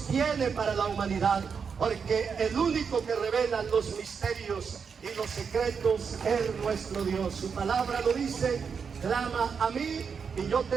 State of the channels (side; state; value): left; quieter; 6.1 dB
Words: tiene para la humanidad, porque el único que revela los misterios y los secretos es nuestro Dios. Su palabra lo dice: clama a mí y yo